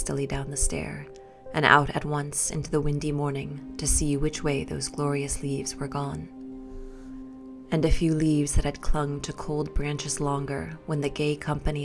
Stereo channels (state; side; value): identical; both; correlation 1.00